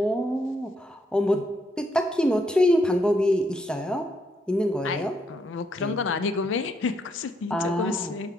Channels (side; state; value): both; normal; correlation 0.75